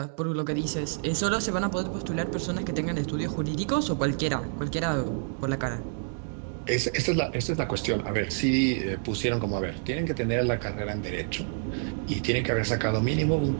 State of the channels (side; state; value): left; silent; digital silence